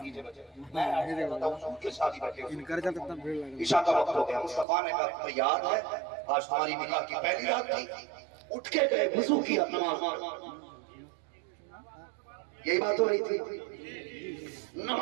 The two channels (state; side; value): drops out; left; at 4.7 s